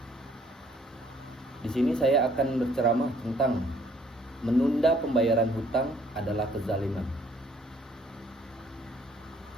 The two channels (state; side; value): normal; both; correlation 0.62